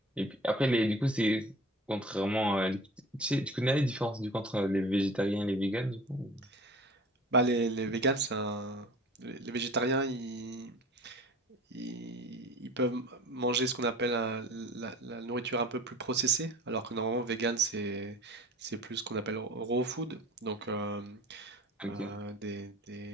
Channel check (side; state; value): both; normal; correlation 0.42